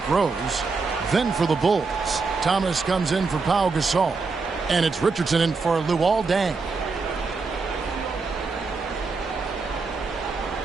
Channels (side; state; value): left; quieter; 4.3 dB